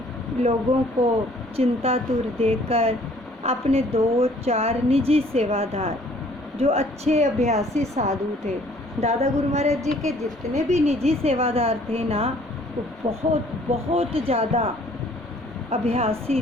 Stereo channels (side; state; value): both; normal; correlation 0.58